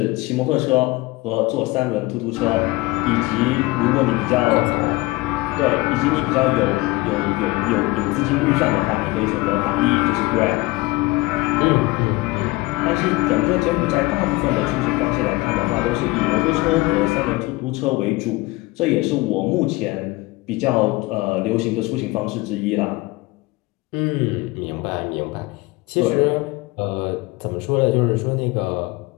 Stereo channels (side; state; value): right; quieter; 21.5 dB